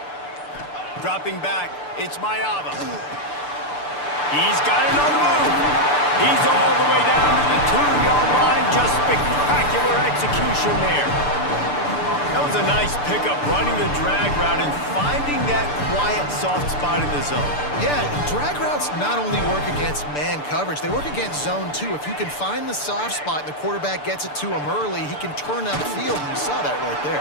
Dropping back, it's Mayava. He's got it on the move. He's all the way down to the 2-yard line. Just spectacular execution there. That was a nice pickup, running the drag route and finding that quiet, soft spot in the zone. Yeah, drag routes not only work against man coverage, they work against zone too. If you can find the soft spot and the quarterback gets it to him early, he can turn upfield, and you saw that right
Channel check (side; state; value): right; late; 6.8 ms